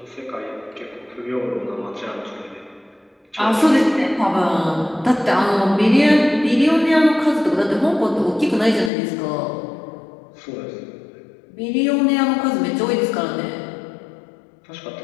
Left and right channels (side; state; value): right; drops out; at 8.9 s